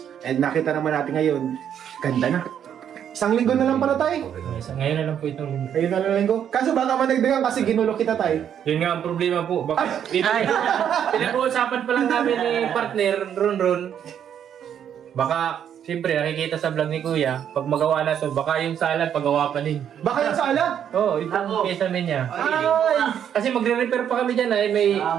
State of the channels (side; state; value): left; quieter; 9.1 dB